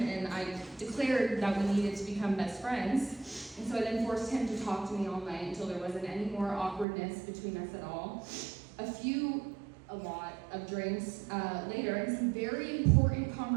and I declared that we needed to become best friends. And so I then forced him to talk to me all night until there wasn't any more awkwardness between us at all. A few a lot of drinks later and some very important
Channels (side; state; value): left; drops out; at 6.9 s